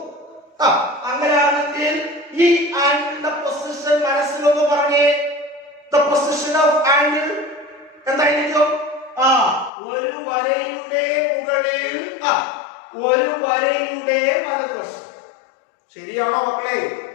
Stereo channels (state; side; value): drops out; right; at 9.7 s